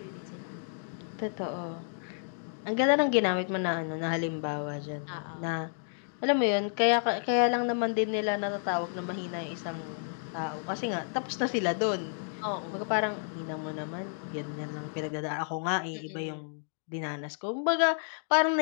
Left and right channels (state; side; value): silent; right; digital silence